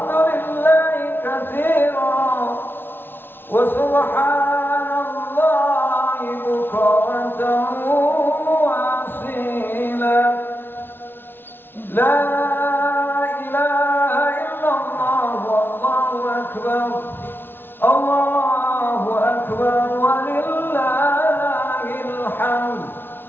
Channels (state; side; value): late; right; 0.10 ms